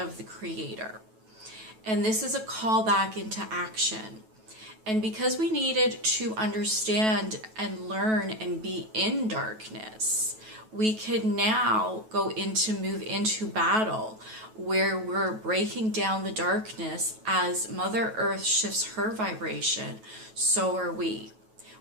the Creator. And this is a call back into action. And because we needed to understand and learn and be in darkness, we could now move into battle, where we're breaking down the darkness. As Mother Earth shifts her vibration, so are we.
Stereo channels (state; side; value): late; left; 9.2 ms